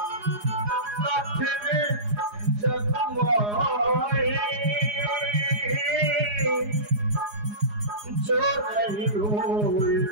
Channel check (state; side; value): late; left; 4.8 ms